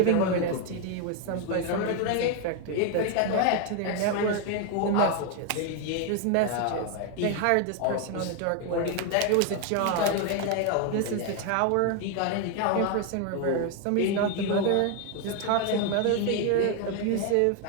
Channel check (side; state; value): both; different; correlation 0.01